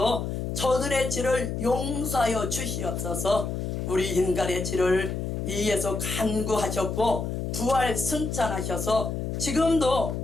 저들의 죄를 용서하여 주시옵소서. 우리 인간의 죄를 위해서 간구하셨고 부활 승천하셔서 지금도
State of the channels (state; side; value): noise; left; hum, 3 dB below the sound